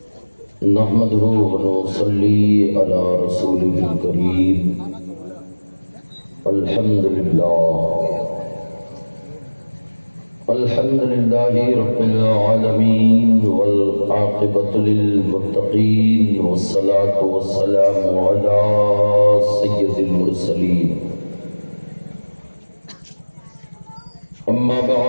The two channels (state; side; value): inverted; both; correlation -1.00